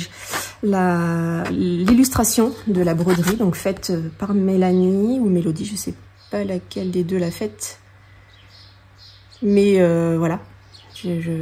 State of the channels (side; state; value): both; identical; correlation 1.00